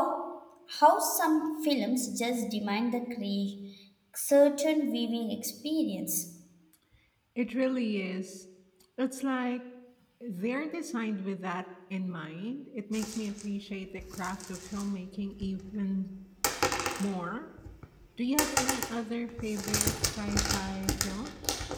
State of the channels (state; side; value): identical; both; correlation 1.00